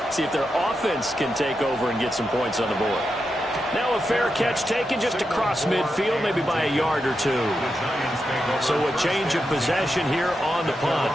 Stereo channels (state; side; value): normal; both; correlation 0.87